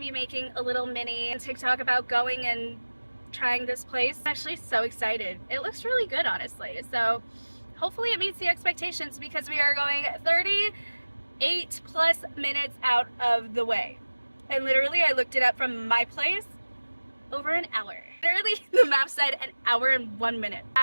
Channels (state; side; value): inverted; both; correlation -1.00